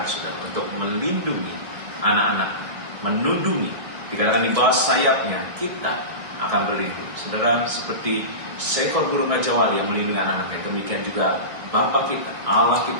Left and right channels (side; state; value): left; late; 1.9 ms